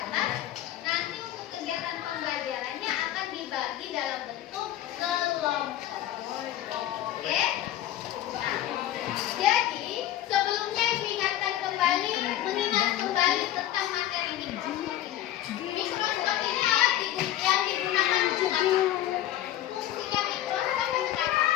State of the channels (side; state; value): right; quieter; 12.9 dB